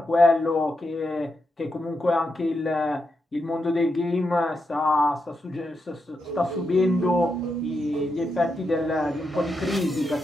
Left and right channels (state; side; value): normal; both; correlation 0.84